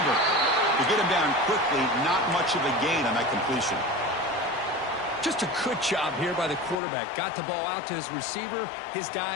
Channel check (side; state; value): right; drops out; at 6.8 s